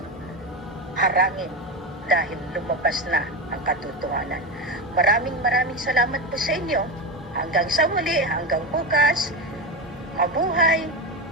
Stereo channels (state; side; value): normal; both; correlation 0.18